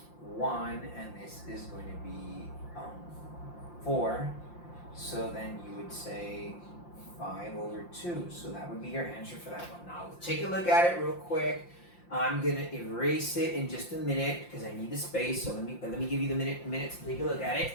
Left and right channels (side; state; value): right; late; 5.7 ms